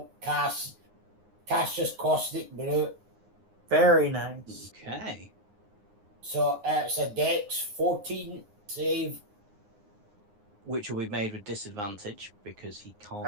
cast Cassius Caustic Brute. Very nice. Okay. So it's a Dex 14 save. Which will be made with disadvantage because he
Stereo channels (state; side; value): late; left; 9.7 ms